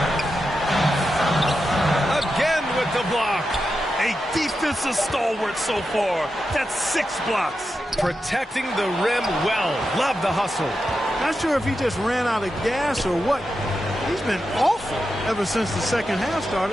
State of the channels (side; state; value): both; normal; correlation 0.89